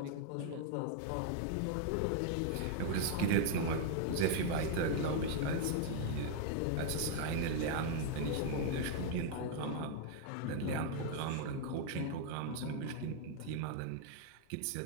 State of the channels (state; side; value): different; both; correlation 0.00